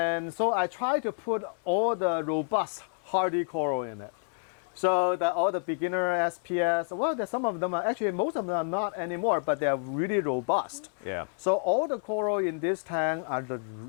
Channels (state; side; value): silent; right; 59 dB below the other